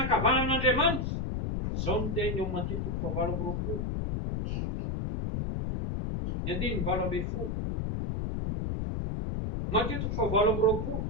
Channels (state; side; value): noise; left; rumble, 1 dB below the sound